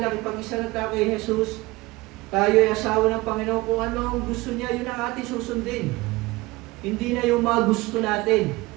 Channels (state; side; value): quieter; left; 21.1 dB